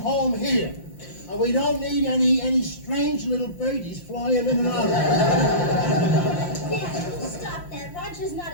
here. And we don't need any strange little birdies flying in and out. Yeah, stop that right Roger's not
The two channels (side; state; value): right; late; 5.7 ms